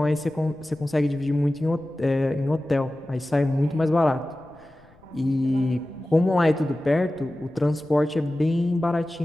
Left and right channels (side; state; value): left; noise; rumble, 29 dB below the sound